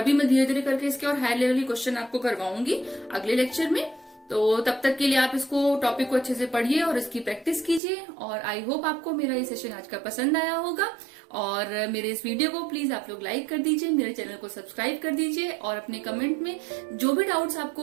मैं धीरे धीरे करके इसके और हाई लेवल के क्वेश्चन आपको करवाऊंगी अगले लेक्चर में। तो तब तक के लिए आप इसको टॉपिक को अच्छे से पढ़िए और इसकी प्रैक्टिस कीजिए। और आई होप आपको मेरा ये सेशन आज का पसंद आया होगा। और मेरे इस वीडियो को प्लीज आप लोग लाइक कर दीजिए, मेरे चैनल को सब्सक्राइब कर दीजिए और अपने कमेंट में जो भी डाउट्स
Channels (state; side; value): drops out; left; at 7.8 s